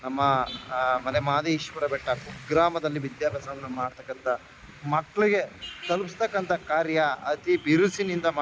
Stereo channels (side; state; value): both; identical; correlation 1.00